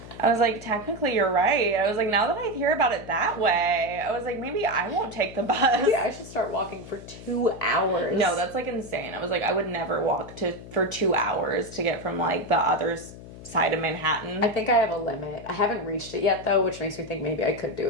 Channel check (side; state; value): left; noise; hum, 15 dB below the sound